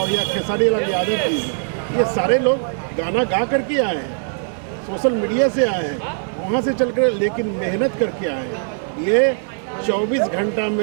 या खेसारी लाल यादव भी हो, ये सारे लोग गाना गा करके आए हैं, सोशल मीडिया से आए हैं, वहाँ से चल कर, लेकिन मेहनत करके आए हैं। ये 24 घंटा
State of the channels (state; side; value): silent; left; 61 dB below the other